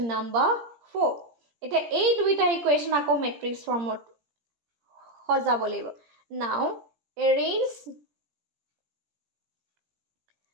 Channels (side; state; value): left; late; 17 ms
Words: number 4 এটা এই দুইটা ইকুয়েশন আকো ম্যাট্রিক্স ফর্মত সজাব লাগিব now arrange